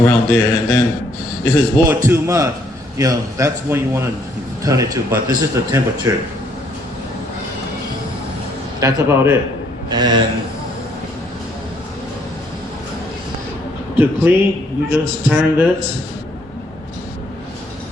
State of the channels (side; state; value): both; normal; correlation 0.67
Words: there. And then if it's boiled too much, that's when you want to turn it to. But this is the temperature. That's about it. And to clean, you just turn this.